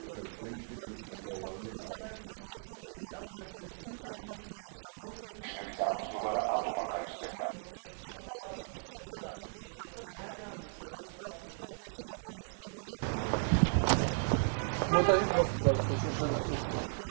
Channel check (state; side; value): silent; left; 53 dB below the other